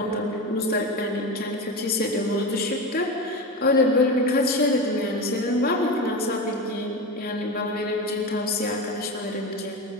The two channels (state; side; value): normal; both; correlation 0.22